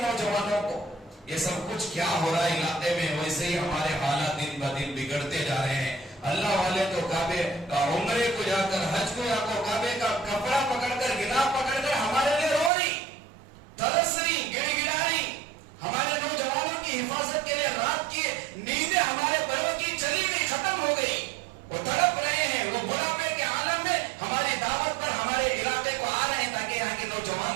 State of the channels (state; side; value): drops out; left; at 12.7 s